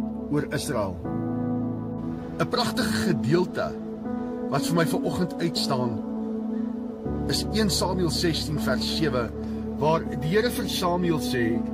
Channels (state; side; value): identical; both; correlation 1.00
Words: oor Israel. 'n Pragtige gedeelte wat vir my vanoggend uitstaan is 1 Samuel 16 vers 7, waar die Here vir Samuel sê,